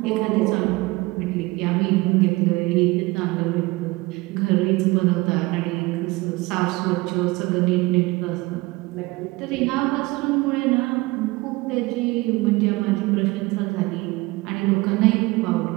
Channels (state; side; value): quieter; left; 22.3 dB